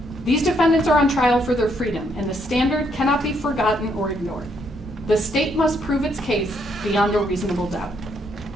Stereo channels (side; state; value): both; normal; correlation 0.73